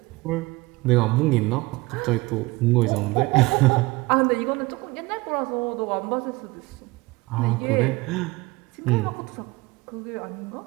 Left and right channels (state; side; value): quieter; left; 22.2 dB